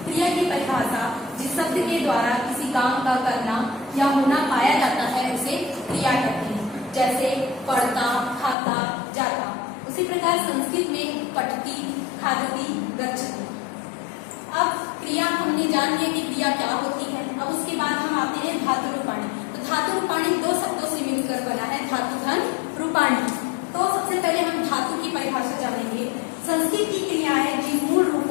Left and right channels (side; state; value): right; drops out; at 8.6 s